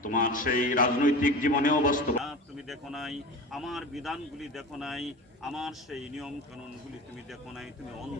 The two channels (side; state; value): both; normal; correlation 0.31